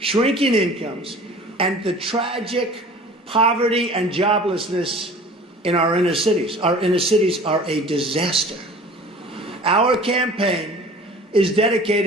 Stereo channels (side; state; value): both; normal; correlation 0.44